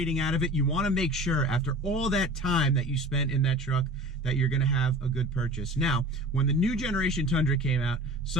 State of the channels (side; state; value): both; normal; correlation 0.39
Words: out of it, you want to make sure after all that time that you spent in that truck that you're going to have a good purchase. Now, when the new generation Tundra came out,